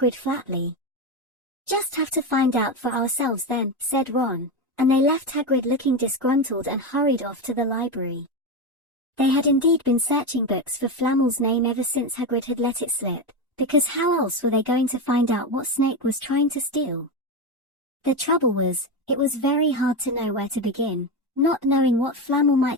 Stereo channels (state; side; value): normal; both; correlation 0.15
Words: flatly. Just have to find out for ourselves then, said Ron, and they left Hagrid looking disgruntled and hurried off to the library. They had indeed been searching books for Flamel's name ever since Hagrid had let it slip, because how else were they going to find out what Snape was trying to steal? The trouble was, it was very hard to know where to begin, not knowing what Flamel